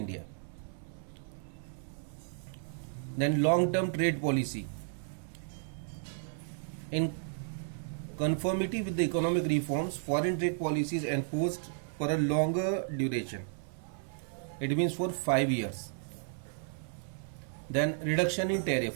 Then long-term trade policy. In conformity with the economic reforms, foreign trade policy is enforced for a longer duration. It means for 5 years. Then reduction in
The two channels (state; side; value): silent; left; 56 dB below the other